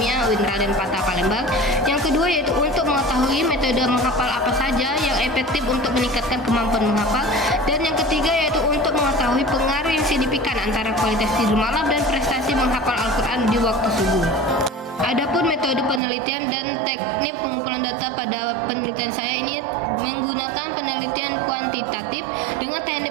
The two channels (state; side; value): drops out; left; at 16.0 s